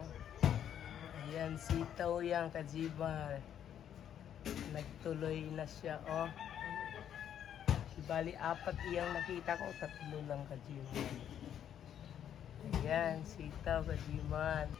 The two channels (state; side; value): quieter; right; 9.7 dB